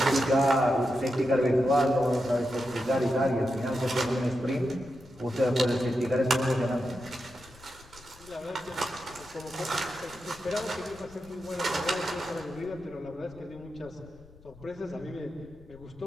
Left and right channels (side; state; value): left; noise; rumble, 23 dB below the sound